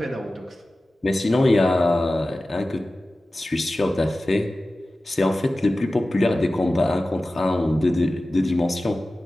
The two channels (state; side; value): normal; both; correlation 0.96